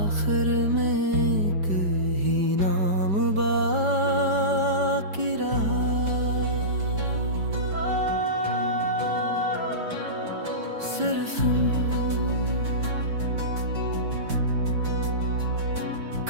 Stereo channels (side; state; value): left; late; 5.0 ms